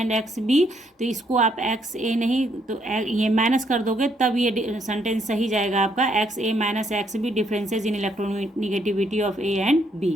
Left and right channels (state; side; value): normal; both; correlation 0.72